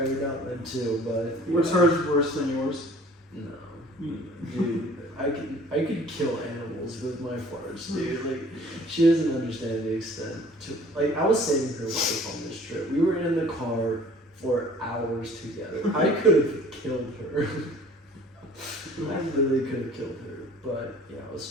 me down then too. But What's hers worse than yours? No, dude, I could kill animals with my farts, dude. Like, she doesn't understand the extent. Like, I was saving her life on this trip. We were in the car for hours together. I could have killed her. I literally could have killed her, but yeah, I was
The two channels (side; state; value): both; normal; correlation 0.51